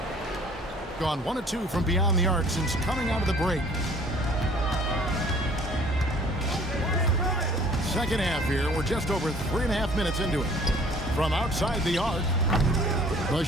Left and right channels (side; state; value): both; normal; correlation 0.54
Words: Gone 1 of 2 from beyond the arc since coming out of the break. Second half here. We're just over 3.5 minutes into it. From outside the arc, the